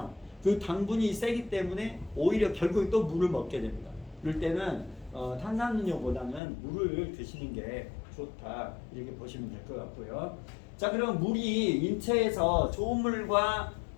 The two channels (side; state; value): right; drops out; at 6.4 s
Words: 그 당분이 세기 때문에 오히려 결국에 또 물을 먹게 됩니다. 그럴 때는 탄산음료보다는 물을 드시는 게 좋다, 이렇게 보시면 될 것 같고요. 자, 그럼 물이 인체에서 좋은 물과